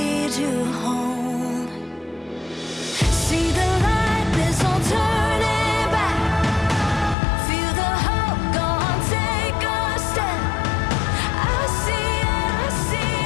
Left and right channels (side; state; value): right; drops out; at 7.2 s